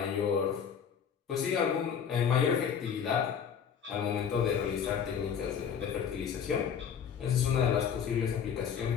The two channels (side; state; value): right; quieter; 7.5 dB